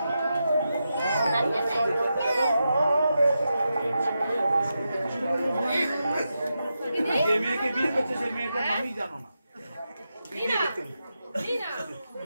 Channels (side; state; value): both; inverted; correlation -0.88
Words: যে মেয়েকে বিয়ে করছে সেই মেয়েটার নামই জানো না।